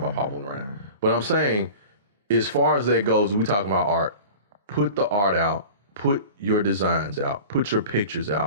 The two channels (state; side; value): inverted; both; correlation -0.37